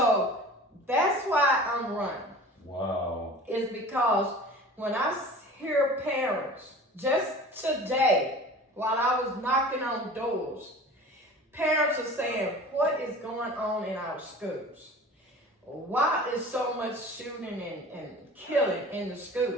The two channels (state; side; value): normal; both; correlation 0.40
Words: that's why I'm running. Wow. Is because when I hear parents, just today, while I was knocking on doors, parents are saying, what is going on in our schools? Why is so much shooting and killing in the